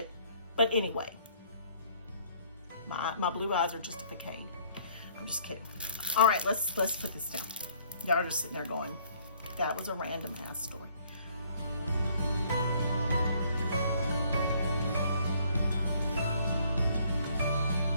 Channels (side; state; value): both; inverted; correlation -0.62